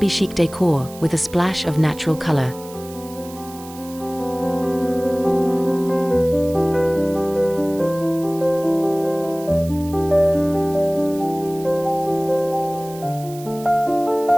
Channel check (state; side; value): noise; right; hiss, 19 dB below the sound